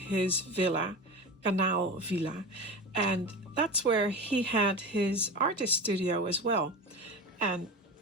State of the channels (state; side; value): normal; both; correlation 0.27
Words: villa, Kanaal Villa. And that's where he had his artist studio as well. And